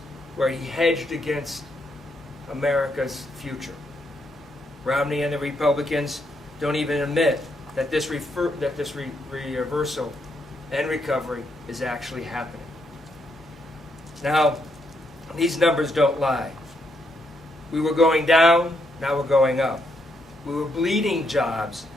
where he hedged against America's future. Romney and the Republicans don't even admit that this reversal and recovery is actually happening. Now, these numbers don't lie. We were going down, now we're going up. We were bleeding jobs,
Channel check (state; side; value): normal; both; correlation 0.77